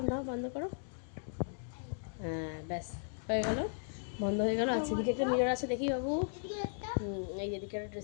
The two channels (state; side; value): silent; right; digital silence